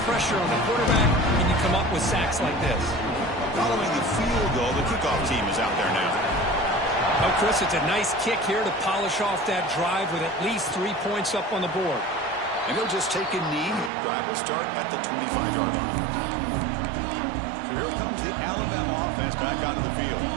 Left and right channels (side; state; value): left; drops out; at 13.9 s